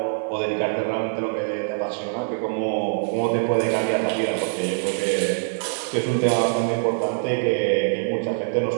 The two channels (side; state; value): left; silent; digital silence